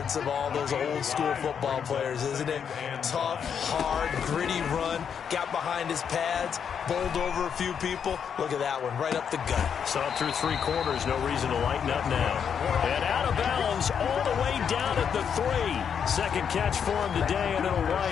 of all those old school football players, isn't it? Tough, hard, gritty run. Got behind his pads, bowled over a few people. Look at that one, right up the gut. Saw through 3 quarters, no reason to lighten up now. And out of bounds, all the way down at the 3. 2nd catch for him today, and it'll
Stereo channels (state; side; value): quieter; right; 7.5 dB